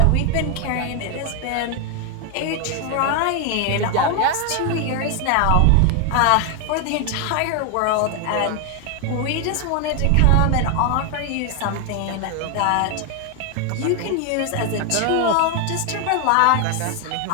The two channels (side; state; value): both; different; correlation 0.01